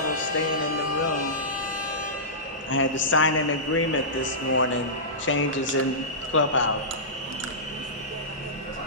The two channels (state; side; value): normal; both; correlation -0.18